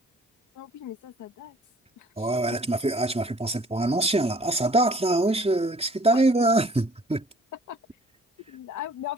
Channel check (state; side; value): normal; both; correlation 0.54